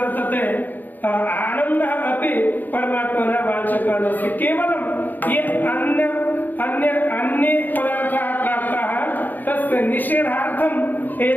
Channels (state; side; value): late; right; 0.086 ms